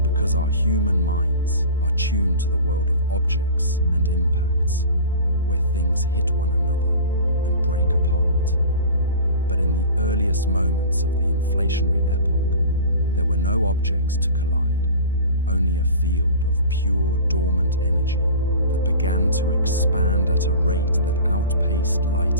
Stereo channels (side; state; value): both; inverted; correlation -0.38